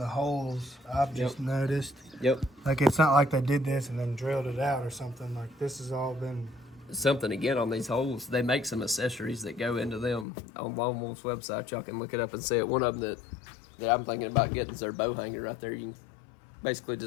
holes. I've just noticed. yep, Like it's not like they did this and then drilled it out or something. Like this has all been. something again on these holes. They make some accessories that go into them on Lone Wolf's website. Y'all can look it up and see it. One of them that I'm thinking about getting is their bow hanger right there. You can basically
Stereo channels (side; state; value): right; drops out; at 10.2 s